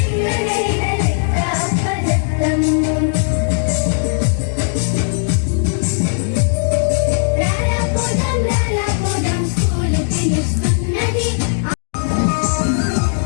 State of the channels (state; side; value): silent; right; digital silence